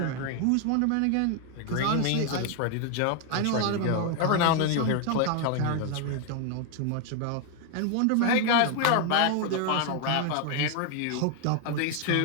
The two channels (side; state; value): both; different; correlation 0.01